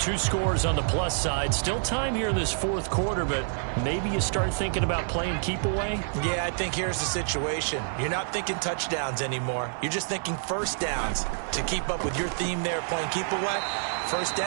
scores on the plus side. Still time here in this fourth quarter, but maybe you start thinking about playing keep away? Yeah, I think here's the situation. You're not thinking touchdowns anymore. You're just thinking first downs. To keep up with your theme there, playing keep away, first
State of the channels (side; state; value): left; silent; digital silence